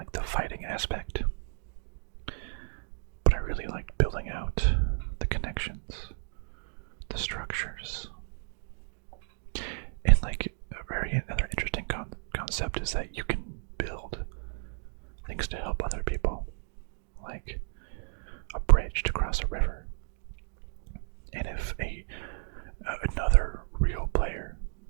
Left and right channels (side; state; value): left; silent; digital silence